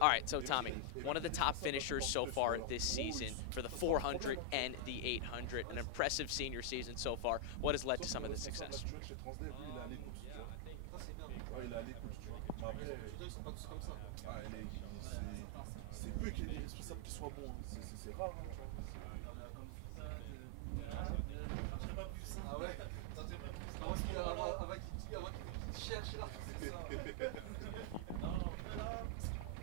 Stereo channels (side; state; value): both; different; correlation 0.00